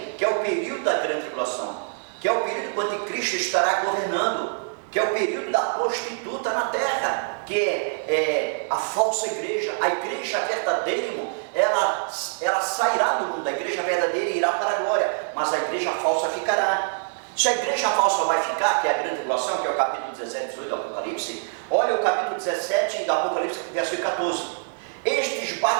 que é o período da grande tribulação, que é o período quando Cristo estará governando, que é o período da prostituta na terra, que é a falsa igreja. A igreja verdadeira, irmão, ela sairá do mundo, a igreja verdadeira irá para a glória, mas a igreja falsa ficará. Se a igreja falsa vai ficar, que é a grande tribulação, que é o capítulo 17 e 18 do Apocalipse, olha o capítulo 17 do Apocalipse, versículo 14. Estes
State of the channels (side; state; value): left; silent; 58 dB below the other